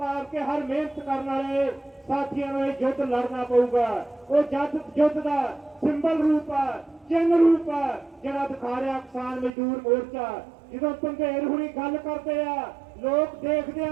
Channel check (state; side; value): drops out; left; at 9.5 s